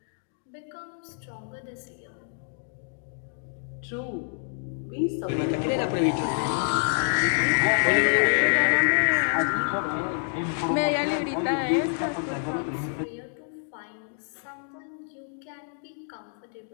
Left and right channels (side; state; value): right; silent; digital silence